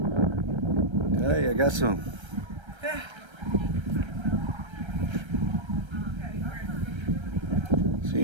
Hey, I got some. See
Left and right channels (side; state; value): left; late; 1.3 ms